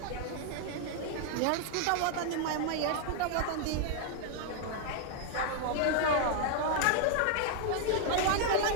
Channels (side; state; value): both; different; correlation 0.00